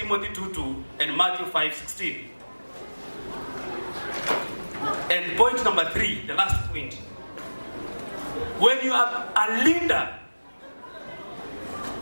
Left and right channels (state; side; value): inverted; both; correlation -1.00